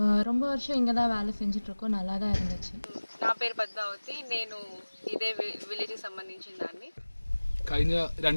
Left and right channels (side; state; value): both; inverted; correlation -1.00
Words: ரொம்ப வருஷம் இங்கே தான் வேலை செஞ்சிட்ருக்கோம். நல்லா தான் இருந்துச்சு. నా పేరు పద్మావతి. నేను ఇదే విలేజ్కి సంబంధించిన దాన్ని. കഴിഞ്ഞ